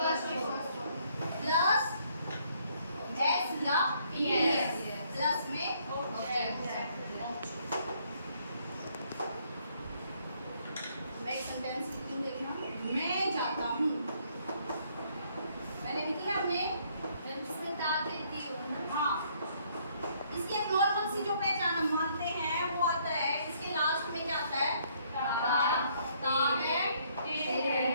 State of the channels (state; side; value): inverted; both; correlation -0.67